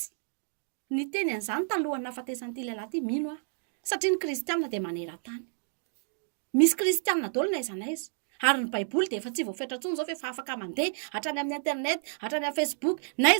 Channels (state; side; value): silent; left; digital silence